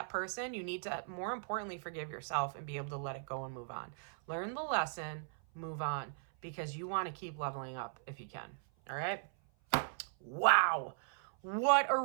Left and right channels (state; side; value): silent; left; 52 dB below the other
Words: person. You need to, more importantly, forgive yourself and be able to let it go and move on. Learn the lesson, move on, because you want to keep leveling up if you can. All right? Wow. What a